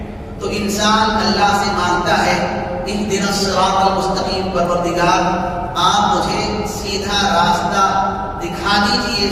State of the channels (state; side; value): identical; both; correlation 1.00